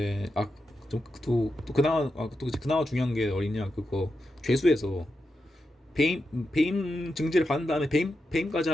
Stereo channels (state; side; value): normal; both; correlation 0.87